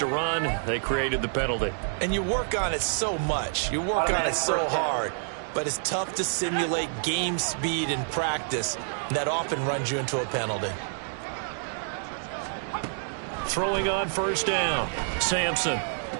run. They created the penalty. And you work on it so much. You work on it so hard. But it's tough to simulate game speed in practice. That often runs you into a penalty. Throwing on first down. Sampson.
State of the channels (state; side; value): silent; left; digital silence